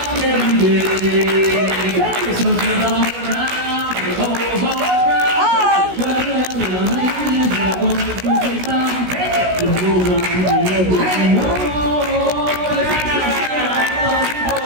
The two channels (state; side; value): late; left; 16 ms